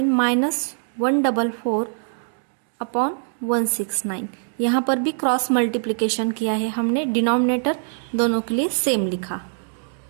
माइनस 144/169। यहाँ पर भी क्रॉस मल्टीप्लिकेशन किया है हमने, डिनोमिनेटर दोनों के लिए सेम लिखा,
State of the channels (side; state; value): left; silent; digital silence